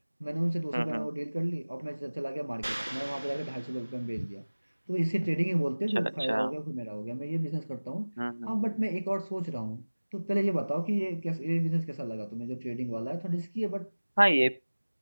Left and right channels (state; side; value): inverted; both; correlation -1.00